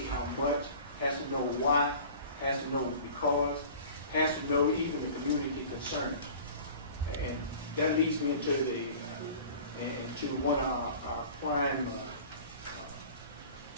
how much, has to know why, has to know because, has to know even the community concerns. And that leads me into into one of our prime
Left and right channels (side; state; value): both; inverted; correlation -0.43